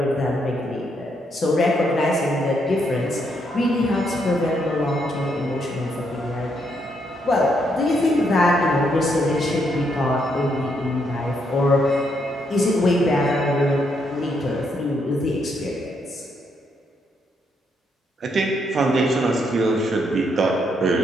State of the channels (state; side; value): normal; both; correlation 0.76